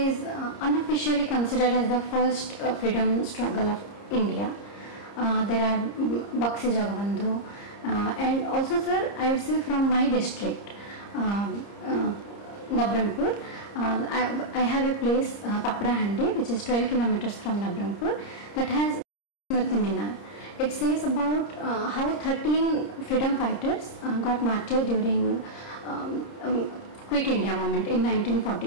unofficially considered as the first freedom struggle of India. There are Bakshi Jagabandhu, and also, sir, I would say from my district, Nabrangpur, I have a place, Paprahandi, which is 12 kilometers from Nabrangpur, that has Smriti Minar. It says about how 13 freedom fighters got martyred during Quit India movement in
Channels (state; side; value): late; right; 30 ms